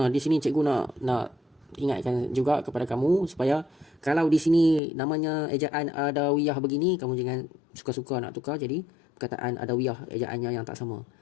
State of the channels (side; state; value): right; drops out; at 4.8 s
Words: Di sini cikgu nak ingatkan juga kepada kamu supaya kalau di sini namanya ejaan Adawiyah begini, kamu jangan suka-suka nak tukar jadi perkataan Adawiyah ejaannya yang tak sama.